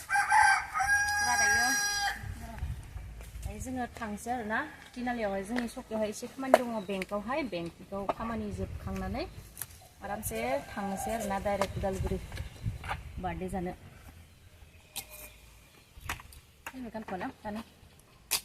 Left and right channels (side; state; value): both; identical; correlation 1.00